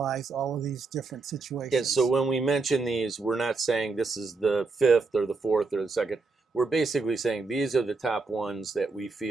all of these different situations. Yeah, so when we mention these, we're not saying this is the 5th or the 4th or the 2nd. We're basically saying these are the top ones that we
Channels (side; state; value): left; quieter; 4.0 dB